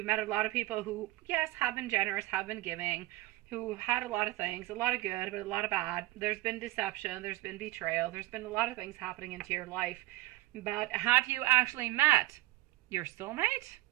met a lot of people who, yes, have been generous, have been giving, who had a lot of things, a lot of good, but a lot of bad. There's been deception, there's been betrayal, there's been a lot of things happening into your life. But have you actually met your soulmate?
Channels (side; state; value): left; quieter; 18.2 dB